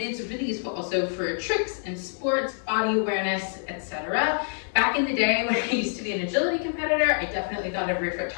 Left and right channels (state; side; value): silent; right; digital silence